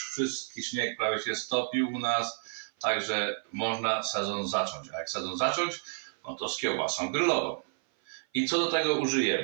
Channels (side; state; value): left; silent; 56 dB below the other